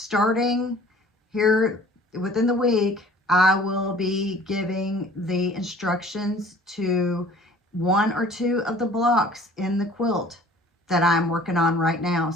here within the week, I will be giving the instructions to 1 or 2 of the blocks in the quilt that I'm working on right now.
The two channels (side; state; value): both; normal; correlation 0.50